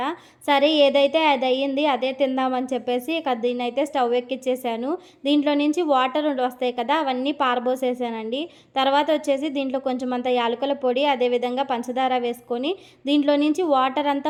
సరే ఏదైతే అదయ్యింది. అదే తిందామని చెప్పేసి ఇక దీన్నైతే స్టవ్ ఎక్కిచ్చేసాను. దీంట్లో నుంచి వాటర్ వస్తాయి కదా! అవన్నీ పారబోసేసానండి. తర్వాత వచ్చేసి దీంట్లో కొంచెమంత యాలకుల పొడి, అదేవిధంగా పంచదార వేసుకొని దీంట్లో నుంచి వాటర్ అంతా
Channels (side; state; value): both; identical; correlation 1.00